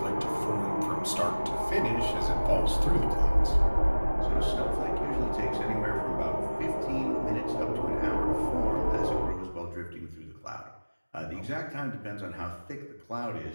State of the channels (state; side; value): inverted; both; correlation -1.00